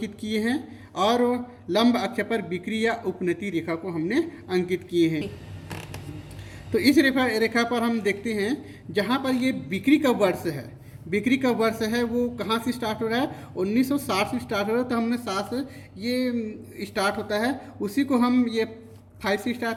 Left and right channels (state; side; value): identical; both; correlation 1.00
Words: किए हैं, और लंब अक्ष पर बिक्री या उपनति रेखा को हमने अंकित किए हैं। तो इस रेखा पर हम देखते हैं जहाँ पर ये बिक्री का वर्ष है, बिक्री का वर्ष है वो कहाँ से स्टार्ट हो रहा है, 1960 से स्टार्ट हो रहा है। तो हमने 7 से ये स्टार्ट होता है, उसी को हम ये 5 से